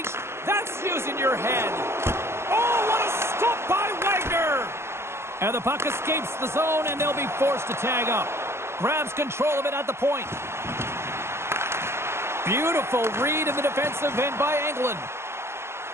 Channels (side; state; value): left; late; 0.12 ms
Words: That's using your head. Oh, what a stop by Wagner. And the puck escapes the zone, and they'll be forced to tag up. Grabs control of it at the point. Beautiful read in the defensive end by Engelland.